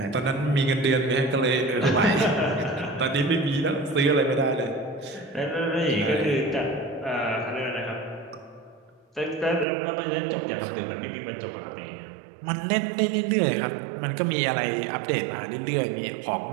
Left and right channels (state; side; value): drops out; left; at 9.7 s